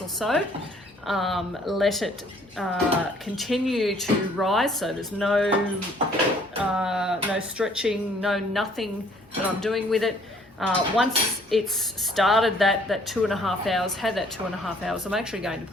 or so. Let it continue to rise, so there's no stretching, nothing that I'm doing with it. Once it's started that 2.5 hours, had that 2.5 hours, I'm actually going to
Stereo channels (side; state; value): both; normal; correlation 0.60